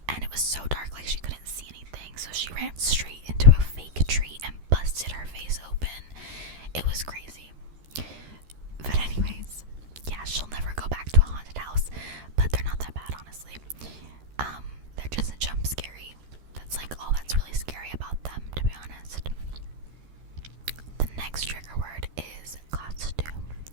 and it was so dark, like she couldn't see anything, so she ran straight into a fake tree and busted her face open. It was crazy. But anyways, yeah, she'll never go back to a haunted house, but they're not that bad, honestly. They're just jump scary. That's like all that's really scary about them, to be honest. The next trigger word is costume.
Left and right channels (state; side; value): late; left; 13 ms